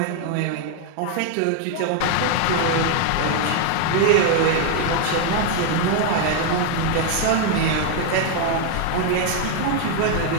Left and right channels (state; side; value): different; both; correlation 0.01